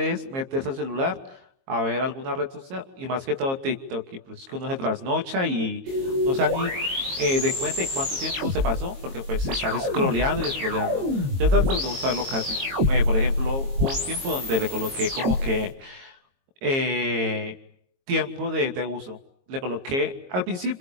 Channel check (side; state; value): left; late; 22 ms